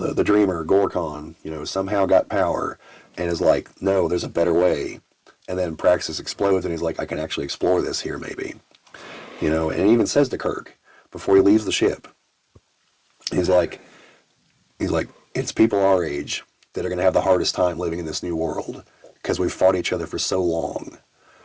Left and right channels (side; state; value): both; identical; correlation 1.00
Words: dreamer, Gorkon, somehow got power and is like, no, there's a better way. And then Praxis explodes and he's like, I can actually explore this here maybe. And he even says to Kirk, before he leaves the ship, he's like, he's like, it's people our age that are going to have the hardest time living in this new world because we've fought each other for so long.